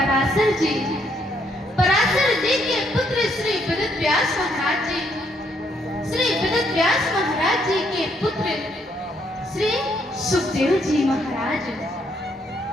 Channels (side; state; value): both; normal; correlation 0.72